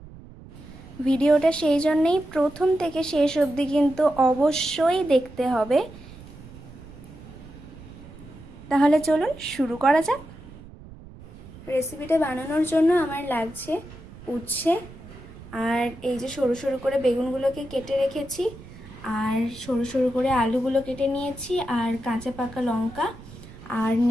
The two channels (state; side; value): noise; right; rumble, 18 dB below the sound